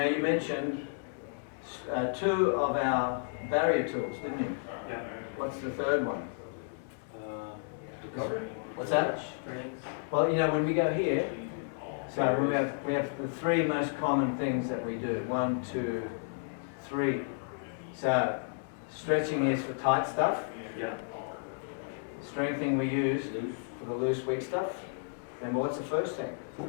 you mentioned 2 of our barrier tools, didn't you? Yeah. What's the third one? Recovery. What's that? Strength. Well, when we go here, so we have the 3 most common things that we do. 1, 2, 3. So stretching is for tight stuff. Yeah. Strengthening we use for the loose, weak stuff. Remember, what's the first thing?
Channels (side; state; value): right; silent; digital silence